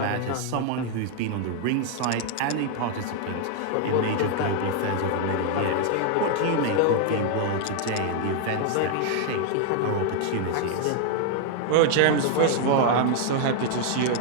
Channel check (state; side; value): different; both; correlation 0.00